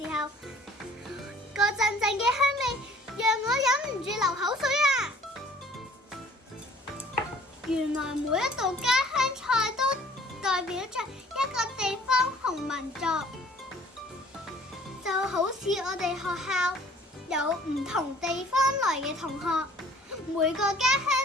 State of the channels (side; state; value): both; normal; correlation 0.54